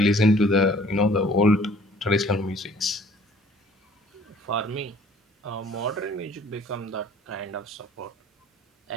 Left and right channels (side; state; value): both; normal; correlation 0.54